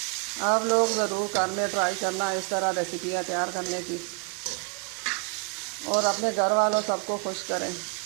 आप लोग ज़रूर घर में ट्राई करना इस तरह रेसिपियाँ तैयार करने की और अपने घर वालों सबको खुश करें।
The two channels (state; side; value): quieter; left; 37.0 dB